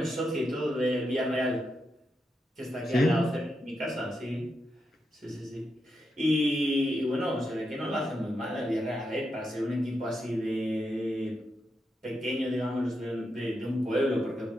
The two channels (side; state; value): both; normal; correlation 0.84